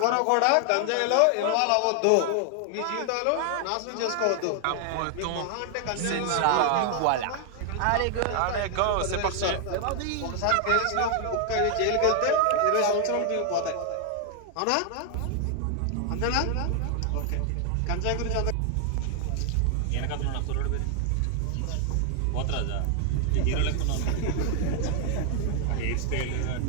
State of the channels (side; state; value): both; different; correlation 0.00